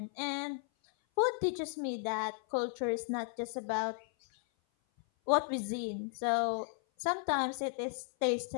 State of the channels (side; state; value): right; silent; 55 dB below the other